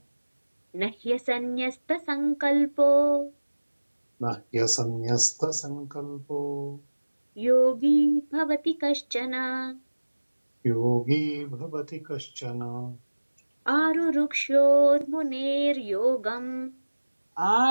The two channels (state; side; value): inverted; both; correlation -1.00